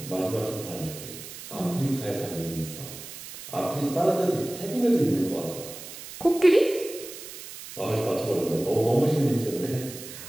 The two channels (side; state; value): right; noise; hiss, 13 dB below the sound